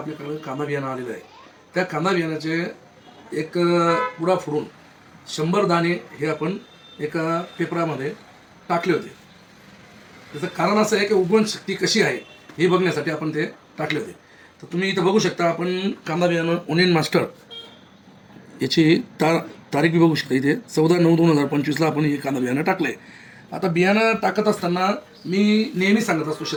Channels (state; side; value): identical; both; correlation 1.00